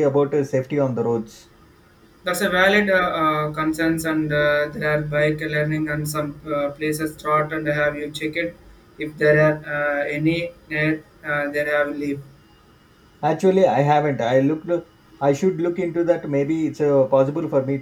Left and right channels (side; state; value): both; identical; correlation 1.00